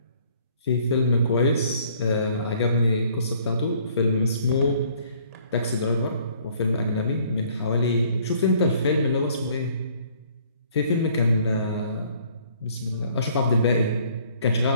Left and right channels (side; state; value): both; inverted; correlation -0.60